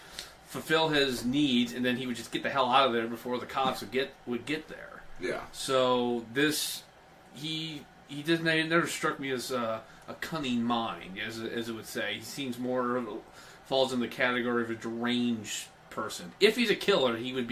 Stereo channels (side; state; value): both; identical; correlation 1.00